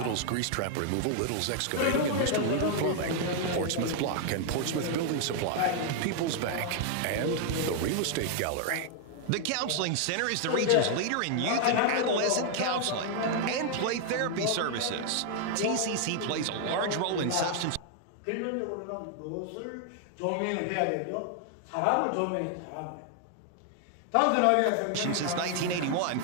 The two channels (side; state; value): both; different; correlation 0.00